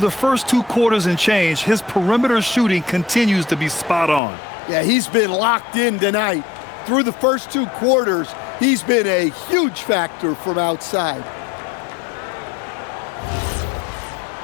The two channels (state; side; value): drops out; right; at 4.2 s